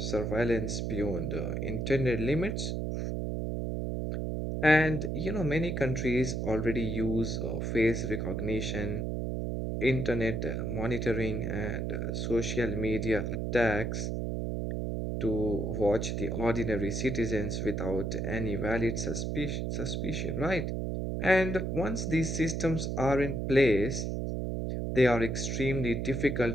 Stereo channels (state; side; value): noise; right; hum, 1 dB below the sound